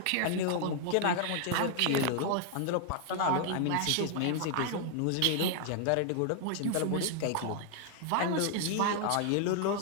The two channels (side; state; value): both; different; correlation 0.00